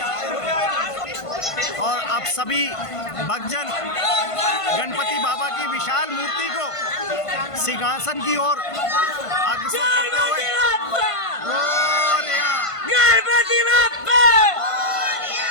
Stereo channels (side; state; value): right; late; 1.5 ms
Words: और आप सभी भक्तजन गणपति बाबा की विशाल मूर्ति को सिंहासन की ओर अग्रसर करते हुए गणपति बाप्पा,